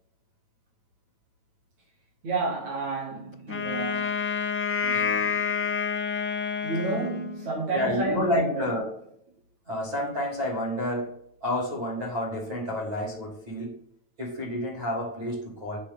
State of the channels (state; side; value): late; left; 9.1 ms